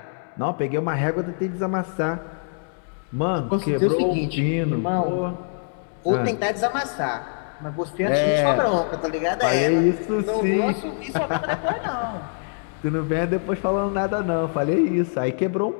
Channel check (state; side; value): silent; right; digital silence